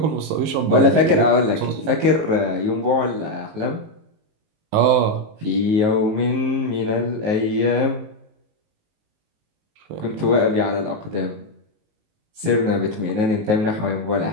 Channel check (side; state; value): left; late; 19 ms